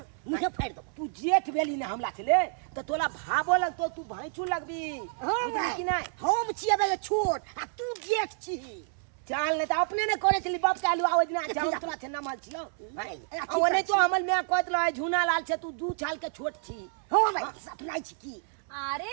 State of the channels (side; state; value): left; silent; 58 dB below the other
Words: मुझे फाड़ दो तू जेठ बेली ने हमला छले तो तोला भाबो लगतो तू भाईचू लगबी हां बुझली कि नहीं हम छिए बे छोट आ तू जेठ छी चाल ने तो अपने ने करे छली बाप के आलू आवाज ना चाल तोला छे ना माल छिलो ओने तो हमल में कहत रहे झुना लाल छे तू 2 साल के छोट छी हो भाई सपना छी की अरे